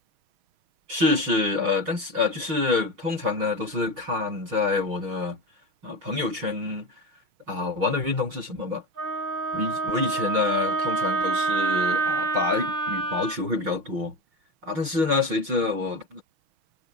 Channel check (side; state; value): left; late; 6.4 ms